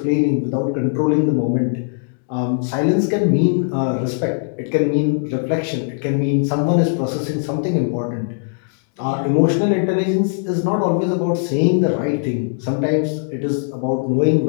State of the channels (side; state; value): right; silent; 66 dB below the other